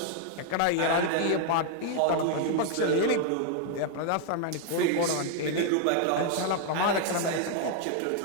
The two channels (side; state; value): both; different; correlation 0.00